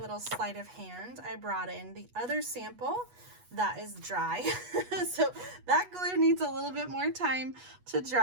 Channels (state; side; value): late; left; 8.2 ms